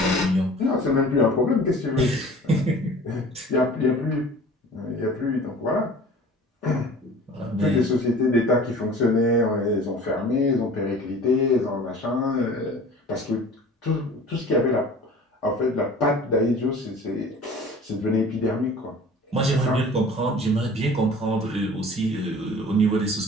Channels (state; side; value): normal; both; correlation 0.44